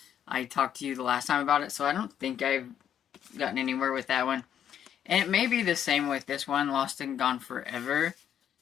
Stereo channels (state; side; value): quieter; right; 9.5 dB